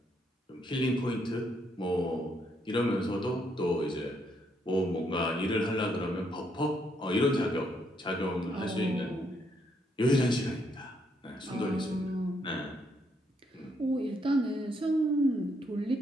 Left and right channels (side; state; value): both; normal; correlation 0.74